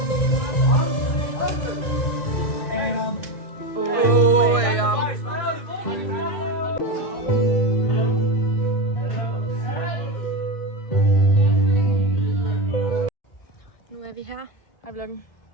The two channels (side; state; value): right; late; 1.6 ms